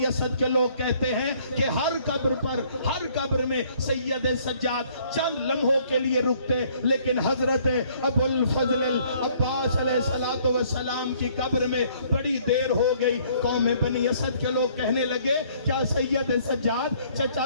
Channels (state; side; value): inverted; both; correlation -0.61